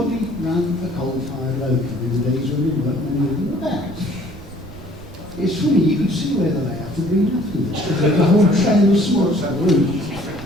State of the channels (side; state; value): right; noise; rumble, 18 dB below the sound